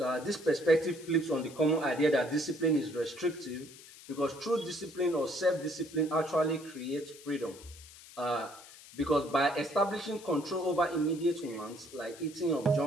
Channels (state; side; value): noise; left; hiss, 19 dB below the sound